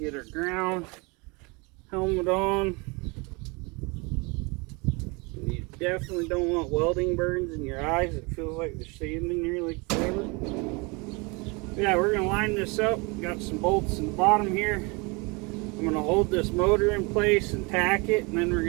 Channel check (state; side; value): quieter; left; 28.4 dB